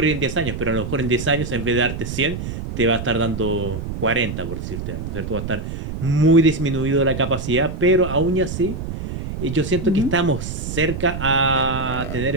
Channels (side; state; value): right; noise; rumble, 6 dB below the sound